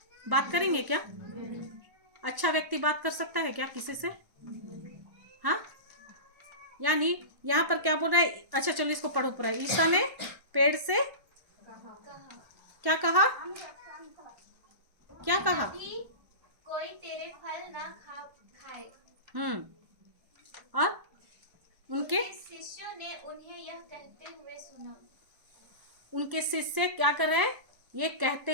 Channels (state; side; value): late; left; 1.1 ms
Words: बात करेंगे क्या? अच्छा व्यक्ति बात कर सकता है क्या किसी से? हाँ, यानी यहाँ पर क्या बोल रहा है? अच्छा चलो इसको पढ़ो पूरा। ईसा ने पेड़ से क्या कहा? क्या कहा? कोई तेरे फल ना खाए। और उनके शिष्यों ने उन्हें यह कहते हुए सुना। उनके शिष्य क्या कर रहे हैं? ये